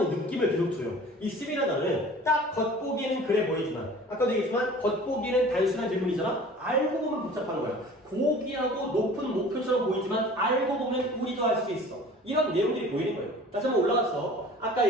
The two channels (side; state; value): both; normal; correlation 0.45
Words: 느낌을 계속 줘요. 이 seem이라는 단어는 딱 겉보기에는 그래 보이지만 아까도 얘기했지만 겉보기에는 단순한 질문이잖아? 알고 보면 복잡한 거야. 고귀하고 높은 목표처럼 보이지만 알고 보면 우리도 알 수 있어. 이런 내용들이 보이는 거예요. 다시 한번 올라가서 아까